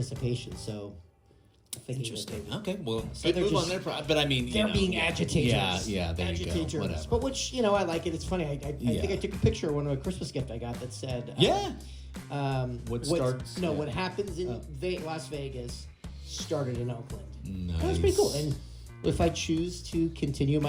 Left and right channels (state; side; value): identical; both; correlation 1.00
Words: So interesting. Okay, well, so move on there. But I mean, they're being agitators. Yeah. There you go. Whatever. But which I like it. It's funny. I think I took a picture of one of a Christmas gift I got that said what happens in Las Vegas started in Oakland. Nice. That's pretty cool. And if I choose to continue